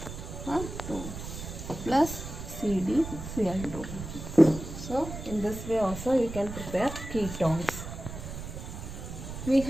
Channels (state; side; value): noise; right; rumble, 9 dB below the sound